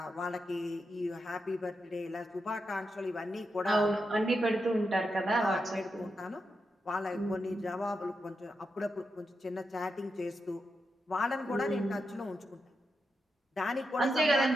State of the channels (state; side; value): normal; both; correlation 0.86